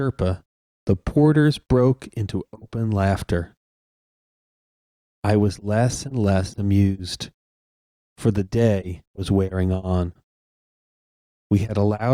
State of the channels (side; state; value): both; identical; correlation 1.00